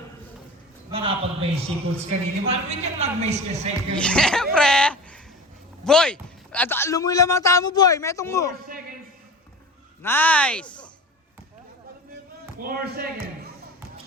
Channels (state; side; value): normal; both; correlation 0.33